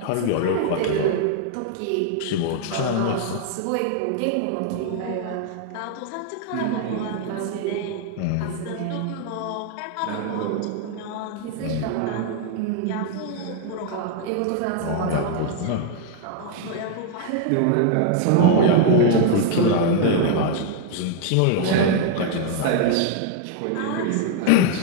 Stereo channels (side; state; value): both; different; correlation 0.00